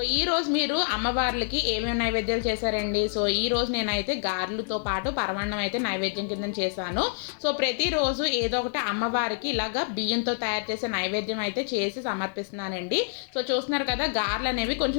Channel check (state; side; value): silent; right; 60 dB below the other